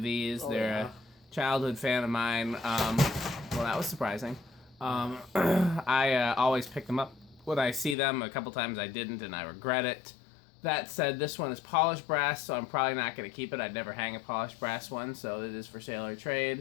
these. They're a childhood fan of mine. Well, that was surprising. I always pick them up when I see them. A couple times I didn't, and I regret it. That said, this one is polished brass, so I'm probably not going to keep it. I'd never hang a polished brass one, so it is for sale or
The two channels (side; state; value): right; drops out; at 8.0 s